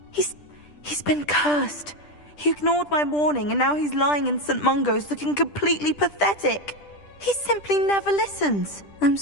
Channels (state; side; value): late; right; 10 ms